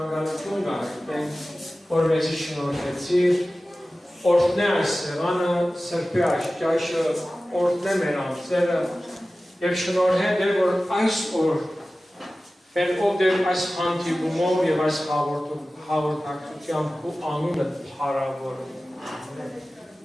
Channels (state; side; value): normal; both; correlation 0.96